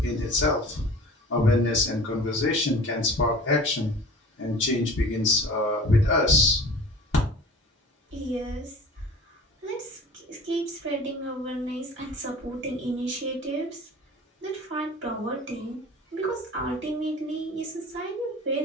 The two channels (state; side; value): normal; both; correlation 0.42